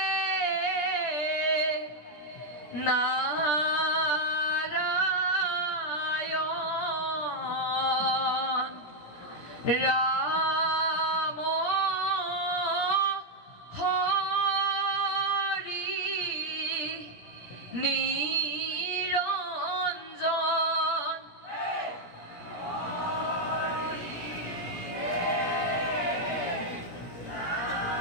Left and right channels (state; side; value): late; right; 17 ms